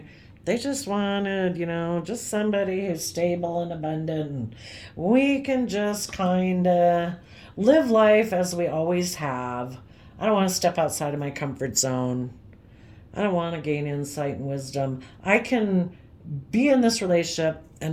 They just wanted, just somebody who's stable and abundant. And we can just kind of live life as we always have. I don't want to step outside of my comfort zone. I don't want to gain insight and wisdom. I can be in this relationship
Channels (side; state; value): both; identical; correlation 1.00